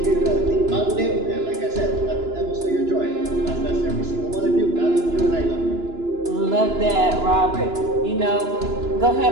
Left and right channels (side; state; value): left; late; 2.9 ms